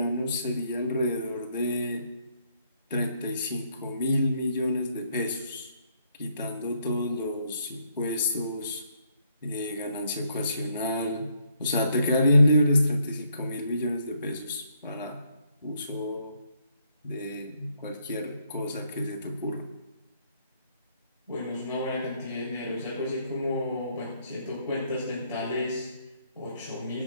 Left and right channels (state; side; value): inverted; both; correlation -0.71